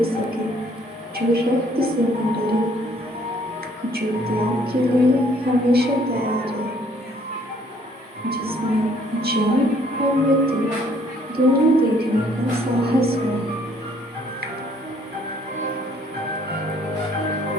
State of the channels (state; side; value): normal; both; correlation 0.62